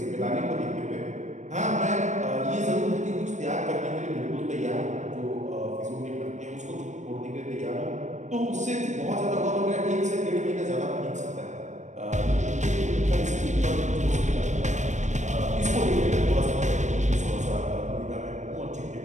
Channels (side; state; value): left; late; 0.34 ms